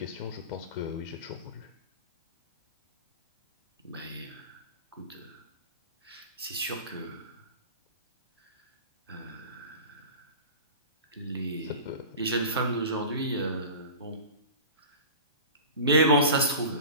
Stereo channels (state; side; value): inverted; both; correlation -0.35